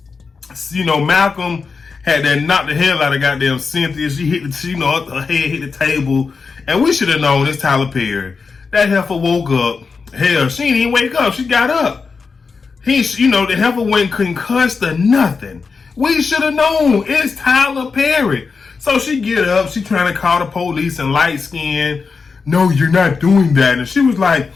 know, Malcolm had that knock the hell out of goddamn Cynthia. She hit the, her head hit the table. And we should have known it's Tyler Perry. That heifer woke up. Hell, she didn't even wake up. She got up. The heifer went concussed or nothing. We should have known it's Tyler Perry. So she get up. She trying to call the police and light skin. No, you're not doing that. And she was like,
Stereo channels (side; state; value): right; quieter; 4.9 dB